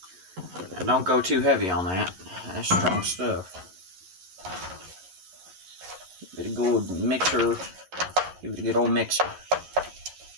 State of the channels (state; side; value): late; left; 11 ms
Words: And don't go too heavy on that. That's strong stuff. Give it a good mixer. Give it a good old mixer.